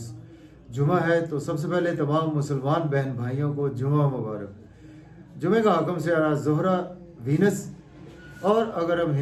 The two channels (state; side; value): identical; both; correlation 1.00